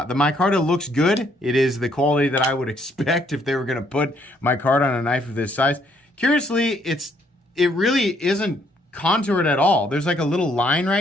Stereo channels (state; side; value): normal; both; correlation 0.69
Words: micarta looks good. It is the quality that I would expect if they were going to put micarta on a knife of this size. Curiously, it really isn't contoured at all. There's like a little line